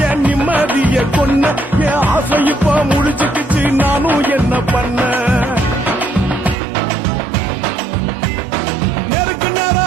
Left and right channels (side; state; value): left; drops out; at 6.6 s